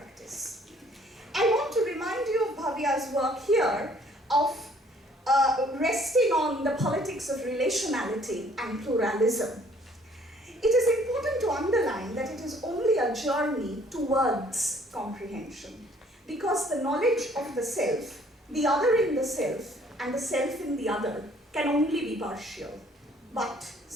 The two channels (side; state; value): both; normal; correlation 0.59